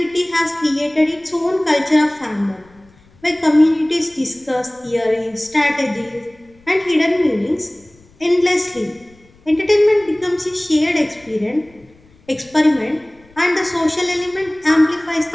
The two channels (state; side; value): noise; left; rumble, 29 dB below the sound